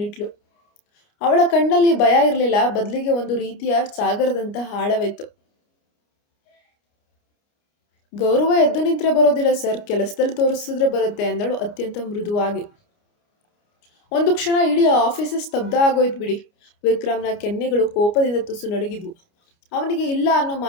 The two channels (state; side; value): late; right; 29 ms